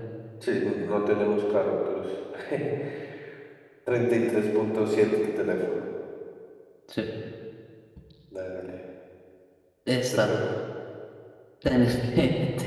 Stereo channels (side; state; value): both; identical; correlation 1.00